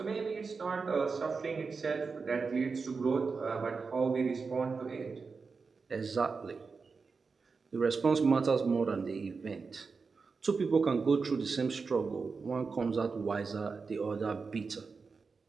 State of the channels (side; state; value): left; quieter; 4.8 dB